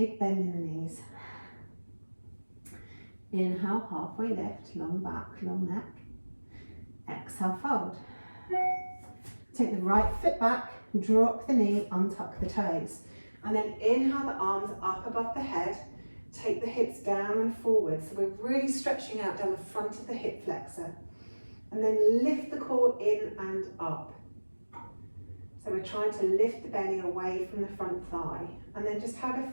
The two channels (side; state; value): both; inverted; correlation -1.00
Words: bend in the knees. Inhale, halfway lift, long back, long neck. Exhale, fold. Take the right foot back, drop the knee, untuck the toes. And then inhale the arms up above the head. Take the hips down and forward. So we're really stretching out down the front of the hip flexor. And then lift the core in and up. So we're trying to lift the belly away from the front thigh. And then just have a